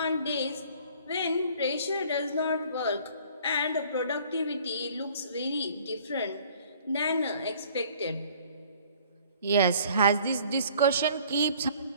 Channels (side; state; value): both; inverted; correlation -0.54